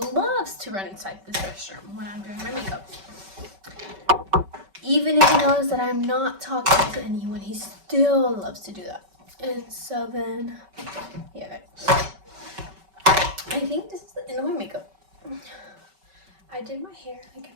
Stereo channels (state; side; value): late; left; 5.2 ms